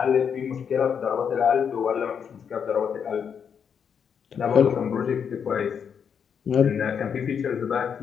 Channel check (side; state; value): right; quieter; 7.3 dB